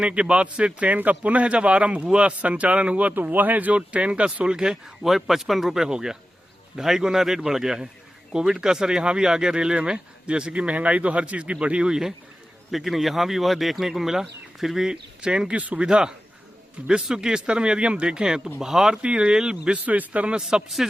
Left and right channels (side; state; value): both; normal; correlation 0.93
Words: के बाद से ट्रेन का पुनः जब आरंभ हुआ, संचालन हुआ, तो वह जो ट्रेन का शुल्क है वह 55 रुपये हो गया। 2.5 गुना रेट बढ़ गया है। कोविड का असर यहाँ भी आ गया रेलवे में। जैसे कि महंगाई तो हर चीज़ की बढ़ी हुई है, लेकिन यहाँ भी वह देखने को मिला। फिर भी ट्रेन की सुविधा विश्व के स्तर में यदि हम देखें तो भारतीय रेल विश्व स्तर में सबसे